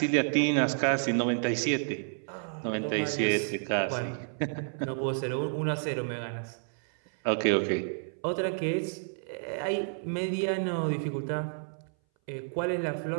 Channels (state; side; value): silent; left; 58 dB below the other